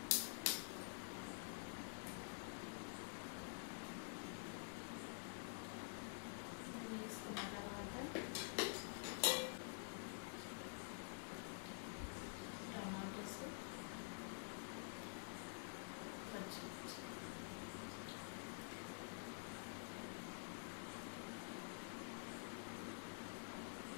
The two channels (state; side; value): silent; right; digital silence